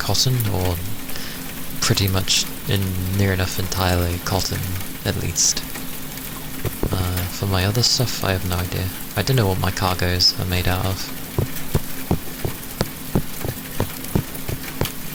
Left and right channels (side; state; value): both; identical; correlation 1.00